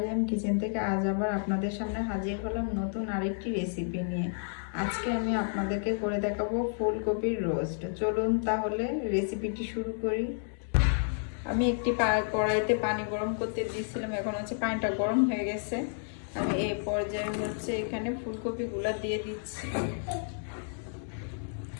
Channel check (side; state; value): right; silent; digital silence